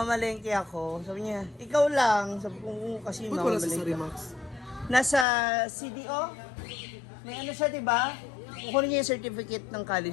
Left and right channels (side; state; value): right; drops out; at 5.2 s